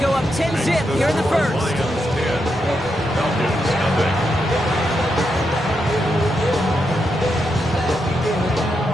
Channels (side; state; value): both; normal; correlation 0.83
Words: up 10-zip here in the 1st.